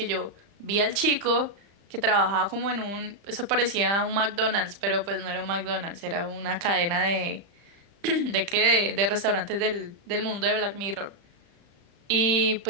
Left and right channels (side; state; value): left; late; 35 ms